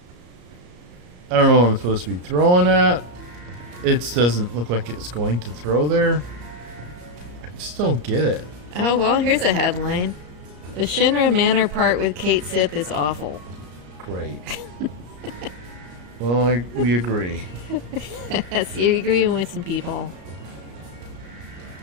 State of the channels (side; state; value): left; late; 34 ms